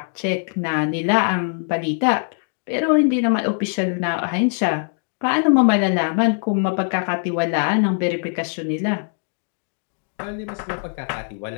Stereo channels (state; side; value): silent; right; 58 dB below the other